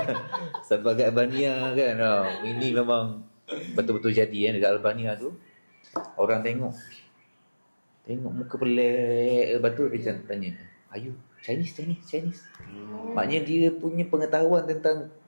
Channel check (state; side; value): inverted; both; correlation -1.00